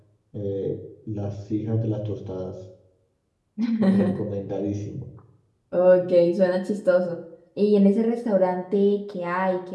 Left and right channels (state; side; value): identical; both; correlation 1.00